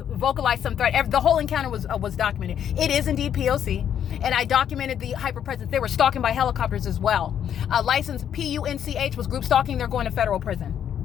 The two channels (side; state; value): right; quieter; 9.3 dB